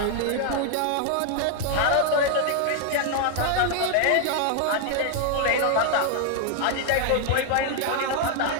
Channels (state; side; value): different; both; correlation 0.00